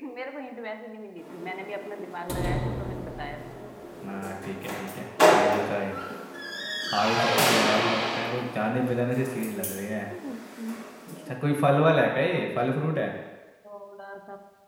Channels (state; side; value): identical; both; correlation 1.00